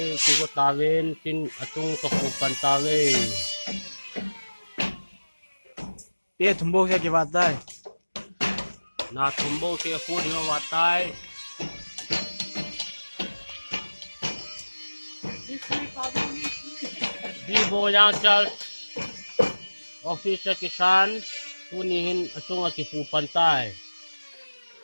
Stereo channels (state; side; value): inverted; both; correlation -1.00